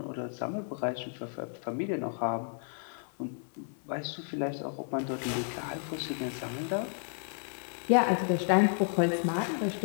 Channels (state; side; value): silent; right; 56 dB below the other